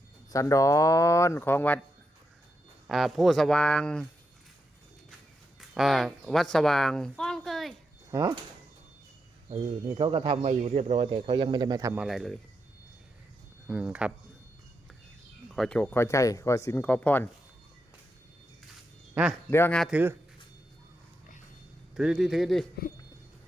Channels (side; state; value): both; normal; correlation 0.84